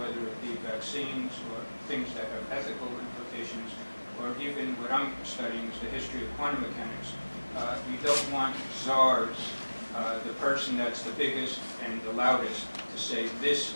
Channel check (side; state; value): both; inverted; correlation -1.00